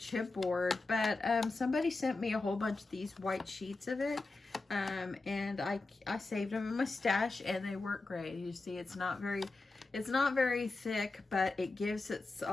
but somebody sent me a whole bunch of these white sheets of it, and I saved them in my stash, and they work great. You see, it's not very thick, but it gives it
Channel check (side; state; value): right; quieter; 3.4 dB